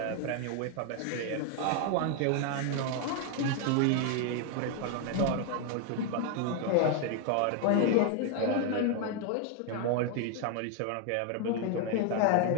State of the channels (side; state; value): both; different; correlation 0.01